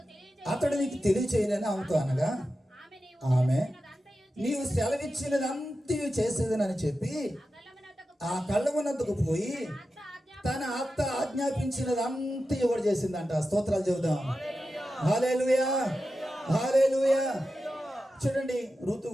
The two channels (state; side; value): normal; both; correlation 0.92